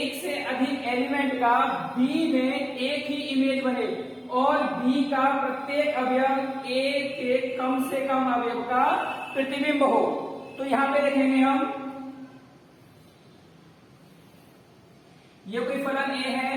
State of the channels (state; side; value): identical; both; correlation 1.00